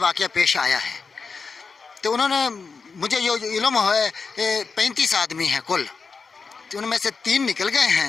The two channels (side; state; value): right; quieter; 4.9 dB